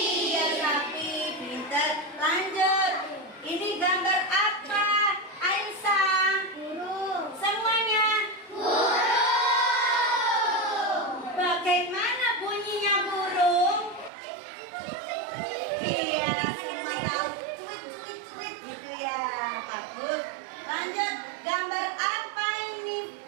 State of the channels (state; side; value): drops out; left; at 14.1 s